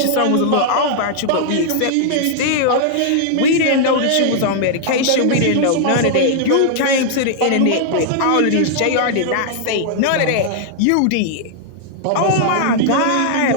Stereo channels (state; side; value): different; both; correlation -0.01